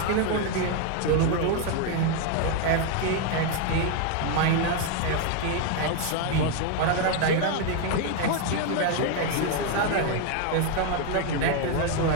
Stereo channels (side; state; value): both; different; correlation 0.01